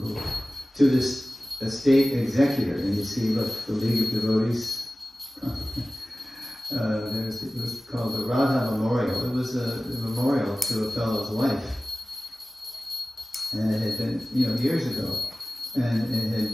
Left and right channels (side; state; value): both; normal; correlation 0.97